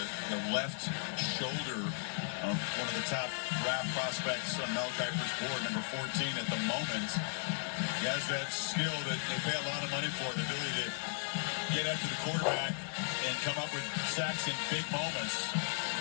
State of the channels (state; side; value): silent; right; digital silence